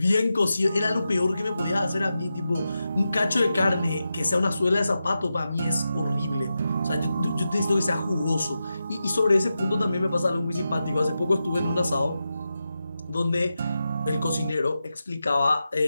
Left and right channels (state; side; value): inverted; both; correlation -0.90